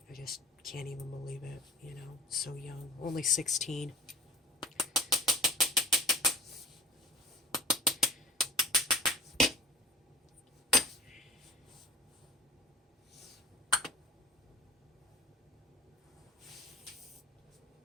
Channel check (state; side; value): normal; both; correlation 0.42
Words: I just can't even believe it, you know, so young, only 16.